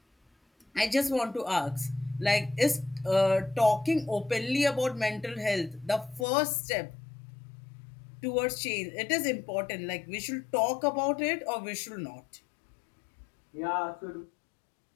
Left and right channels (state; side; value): drops out; right; at 6.2 s